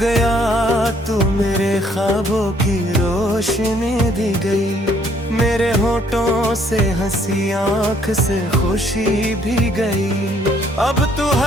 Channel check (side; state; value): both; normal; correlation 0.65